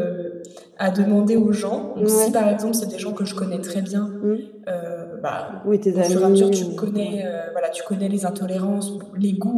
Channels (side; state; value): both; identical; correlation 1.00